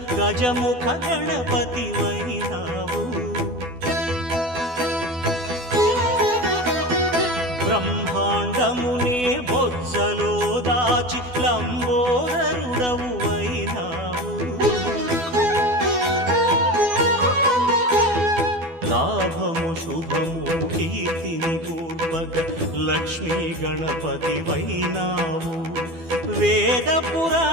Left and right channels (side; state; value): left; late; 12 ms